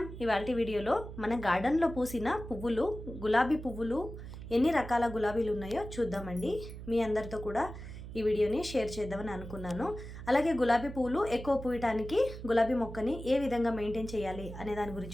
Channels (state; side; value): noise; right; hum, 11 dB below the sound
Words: ఇవాల్టి వీడియోలో మన గార్డెన్లో పూసిన పువ్వులు, గులాబీ పువ్వులు, ఎన్ని రకాల గులాబీలు ఉన్నాయో చూద్దామండి. మీ అందరితో కూడా ఈ వీడియోని షేర్ చేద్దామని అనుకున్నాను. అలాగే గులాబీ పువ్వులు ఎక్కువ పూయటానికి గులాబీ మొక్కని ఏ విధంగా మెయింటైన్ చేయాలి అనే దాని